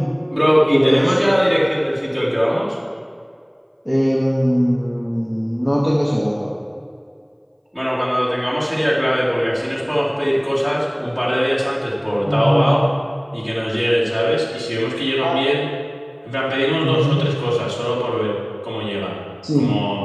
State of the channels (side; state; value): both; identical; correlation 1.00